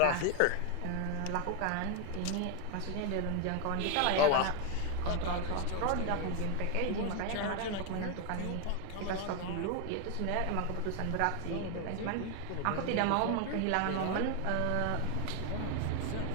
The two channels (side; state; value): both; different; correlation 0.01